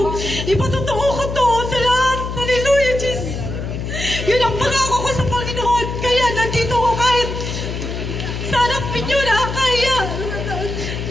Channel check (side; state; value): left; noise; hum, 5 dB below the sound